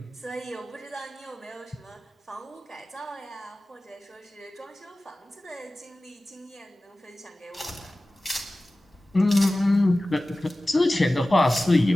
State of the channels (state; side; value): normal; both; correlation 0.97